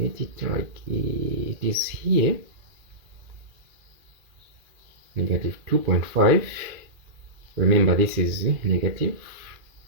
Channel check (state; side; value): late; left; 2.4 ms